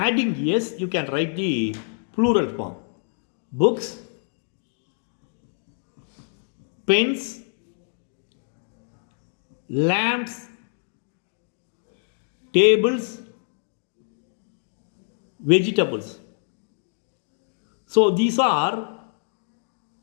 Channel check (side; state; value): right; silent; digital silence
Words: yes, you can write the plural form. Books, pens, lamps, tables, vegetables. So these are